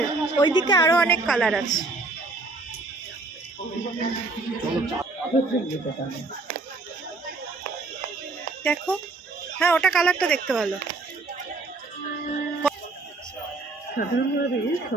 ওইদিকে আরো অনেক কালার আছে। দেখো, হ্যাঁ ওটা কালারটা দেখতে ভালো। সাধারণভাবে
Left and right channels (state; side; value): quieter; left; 3.5 dB